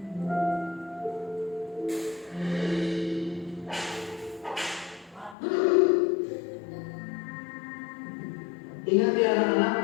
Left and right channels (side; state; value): right; drops out; at 5.4 s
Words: Ingat ya anak-anak,